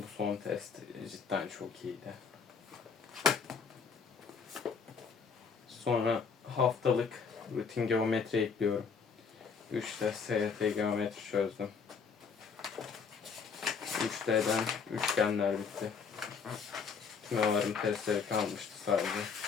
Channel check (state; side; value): quieter; right; 5.8 dB